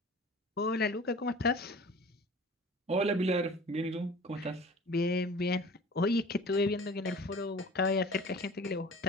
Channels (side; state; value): both; normal; correlation 0.43